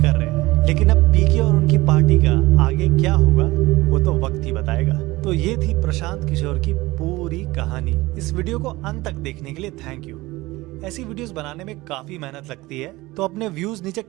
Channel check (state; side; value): quieter; left; 20.1 dB